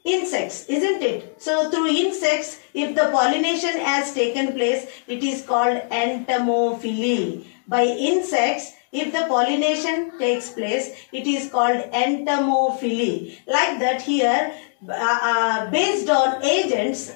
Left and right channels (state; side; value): silent; right; digital silence